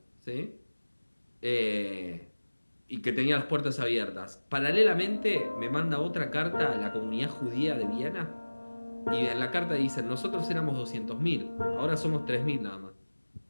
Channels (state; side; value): inverted; both; correlation -1.00